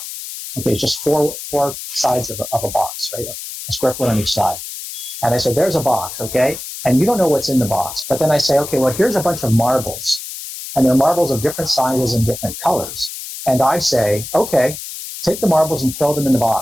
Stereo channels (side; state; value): left; noise; hiss, 9 dB below the sound